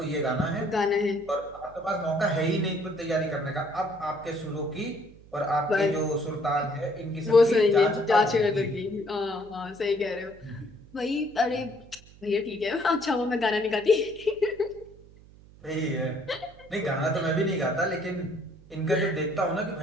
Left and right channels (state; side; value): noise; right; hum, 23 dB below the sound